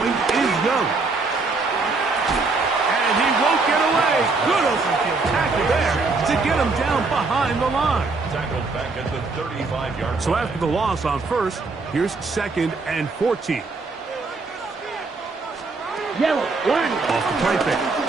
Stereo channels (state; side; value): quieter; left; 3.9 dB